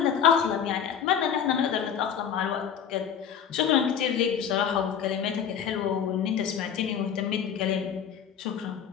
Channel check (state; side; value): quieter; right; 8.1 dB